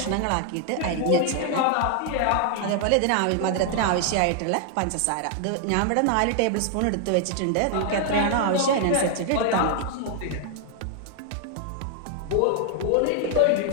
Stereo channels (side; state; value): both; different; correlation 0.00